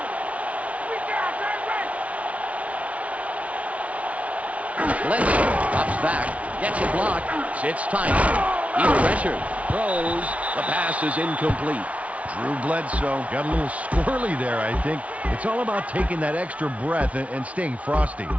We got that Bledsoe drops back, gets a block, sits tight. He's pressured, throws. The pass is incomplete. Drew Bledsoe got a little squirrely there, I think. It's all about taking that extra breath and staying frosty.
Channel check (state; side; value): late; left; 0.066 ms